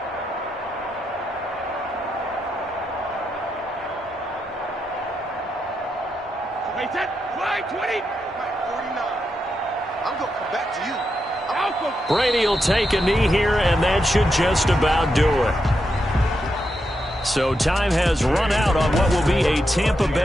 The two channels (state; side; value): normal; both; correlation 0.84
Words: Brady will take a knee here, and that should just about do it. So time has run out on what will be a Tampa